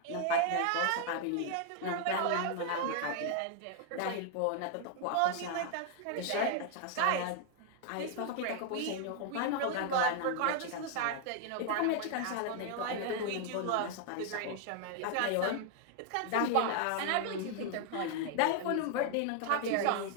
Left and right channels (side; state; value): both; different; correlation 0.00